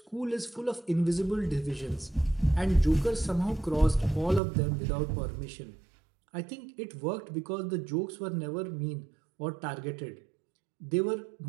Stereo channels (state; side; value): drops out; left; at 4.4 s